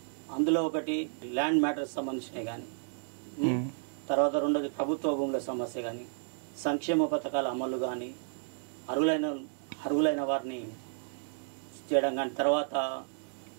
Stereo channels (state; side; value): silent; left; digital silence